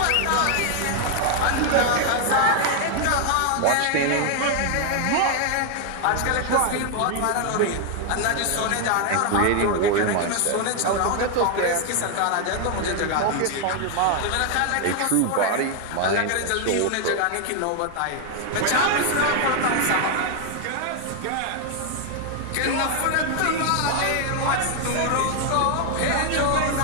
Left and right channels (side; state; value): both; different; correlation 0.00